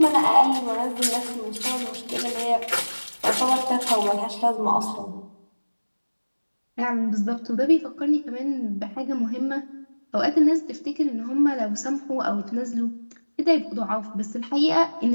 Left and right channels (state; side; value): inverted; both; correlation -1.00